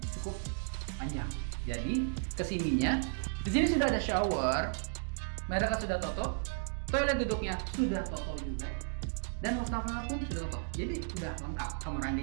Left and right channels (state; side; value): silent; left; digital silence